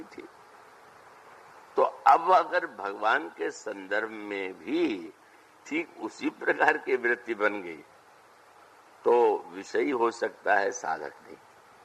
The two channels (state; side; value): identical; both; correlation 1.00